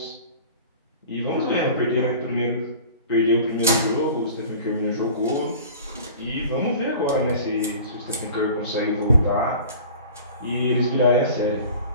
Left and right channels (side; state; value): both; inverted; correlation -0.42